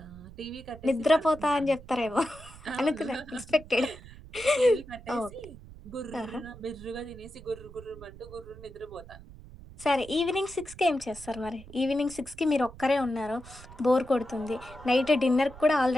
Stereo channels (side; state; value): right; noise; rumble, 18 dB below the sound